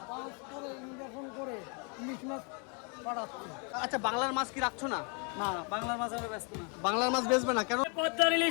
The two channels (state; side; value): quieter; right; 35.9 dB